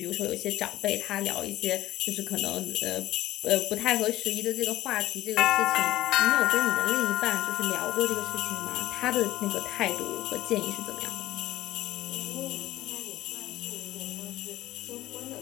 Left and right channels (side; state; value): right; quieter; 15.6 dB